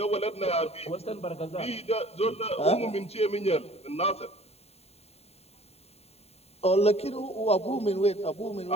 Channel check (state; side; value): late; right; 0.30 ms